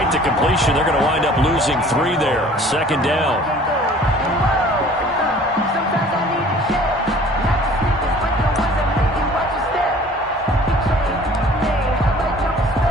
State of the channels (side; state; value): both; normal; correlation 0.50